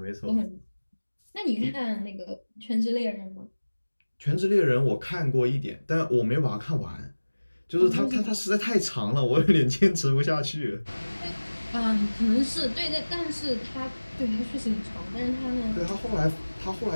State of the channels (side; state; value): both; inverted; correlation -1.00